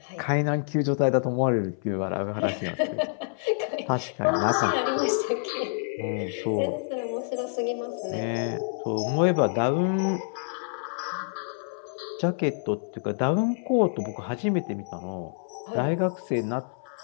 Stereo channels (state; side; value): silent; right; 60 dB below the other